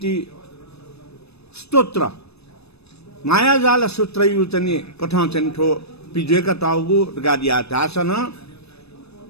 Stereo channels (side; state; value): right; late; 0.79 ms